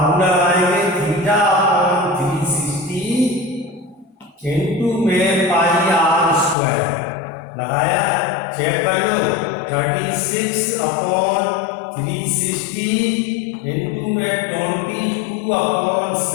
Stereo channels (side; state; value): right; drops out; at 6.6 s